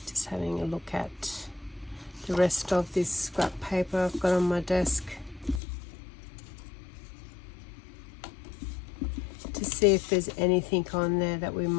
Just having a look at the rest of this scrap paper I've got on my desk to see if there's anything on there that we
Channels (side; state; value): right; drops out; at 5.6 s